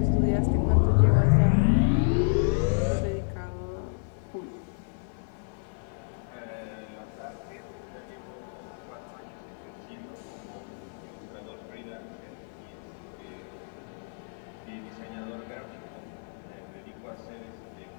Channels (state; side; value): silent; right; digital silence